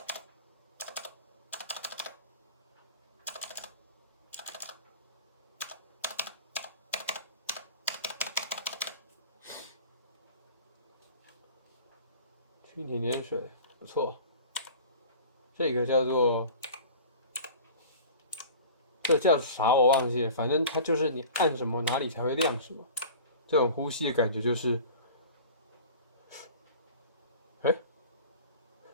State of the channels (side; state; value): both; inverted; correlation -0.40